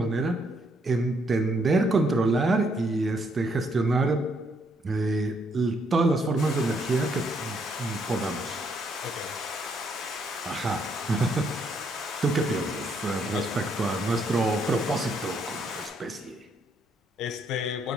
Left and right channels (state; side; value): normal; both; correlation 0.72